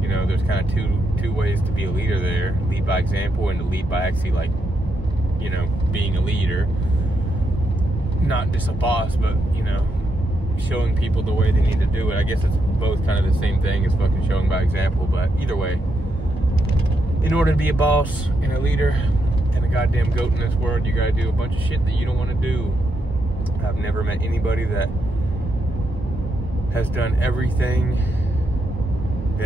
You know, there's kind of two ways to be a leader there. Lead by example, and to lead by actually, like, you know, being a leader. Not just a boss, but, you know, showing people the way they need to do it. I guess it's both kind of the same thing as fucking showing by example, but either way, in order to be a boss and a leader and a goddamn goat in this world, you gotta do a bunch of shit that you don't want to do. I've never met anybody that has done everything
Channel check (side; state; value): both; normal; correlation 0.81